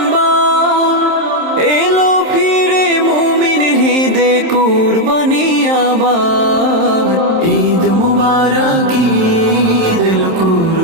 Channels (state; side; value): late; left; 27 ms